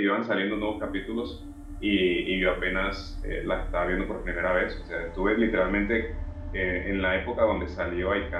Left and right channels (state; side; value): identical; both; correlation 1.00